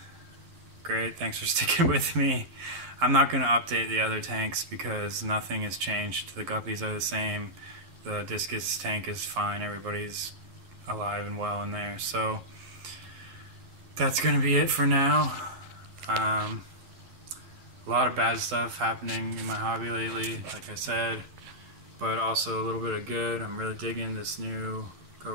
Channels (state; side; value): late; left; 11 ms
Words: great, thanks for sticking with me. I'm not going to update the other tanks because nothing has changed. The guppies are the same. The discus tank is fine. Everybody's alive and well in there. So that's going to be it for now. A lot of bad stuff happening in my hobby lately, like I said, but also a little bit of good. I'm really digging this new